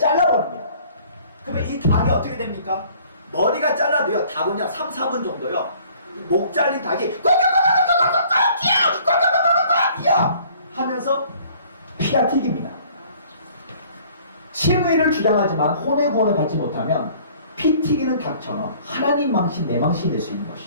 그러면 이 닭이 어떻게 됩니까? 머리가 잘라도요, 닭은요 3, 4분 정도요, 목 잘린 닭이 하면서 피가 튀깁니다. 칭의를 주장하지만 혼의 구원을 받지 못하면 피 튀기는 닭처럼 하나님 망신, 내 망신이 될 수 있는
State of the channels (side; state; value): both; inverted; correlation -0.55